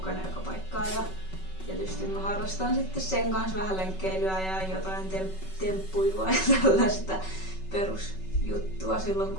joka paikkaan. Ja tietysti mä harrastan sitten sen kanssa vähän lenkkeilyä ja jotain temppuilua ja tällaista perusjuttua silloin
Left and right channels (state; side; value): late; right; 5.3 ms